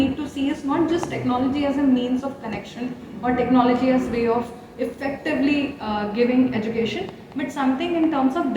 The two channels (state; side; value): identical; both; correlation 1.00